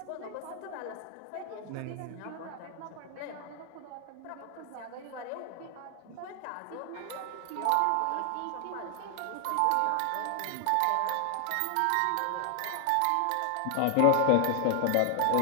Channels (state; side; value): different; both; correlation 0.00